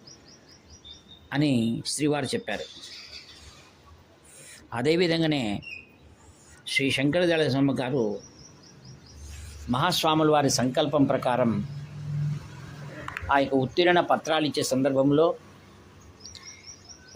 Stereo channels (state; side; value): identical; both; correlation 1.00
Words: అని శ్రీవారు చెప్పారు. అదేవిధంగానే శ్రీ శంకరదయాళ శర్మ గారు మహాస్వాముల వారి సంకల్పం ప్రకారం ఆ యొక్క ఉత్తీర్ణ పత్రాలు ఇచ్చే సందర్భంలో